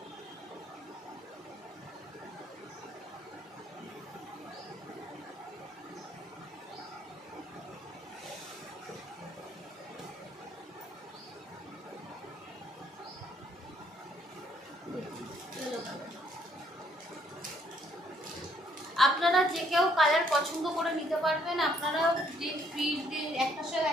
আপনারা যে কেউ কালার পছন্দ করে নিতে পারবেন। আপনারা যে ফ্রি একটার সাথে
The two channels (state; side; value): normal; both; correlation 0.67